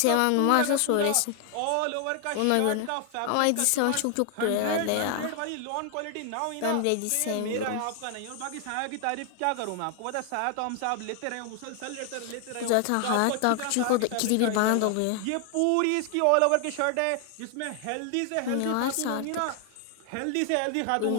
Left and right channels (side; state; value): both; different; correlation 0.00